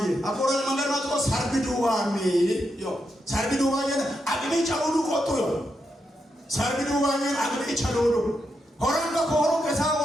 አቆራል መንገድ ማጥቆ ሰርቢዱዋሚ ዮ ሰርቢዱዋዬ አግኒ ጫውሉ ቆጡ ዮ ሰርቢዱዋዬ አግኒ ጫውሉ ሆራንጋ ኮሮ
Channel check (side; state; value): both; normal; correlation 0.84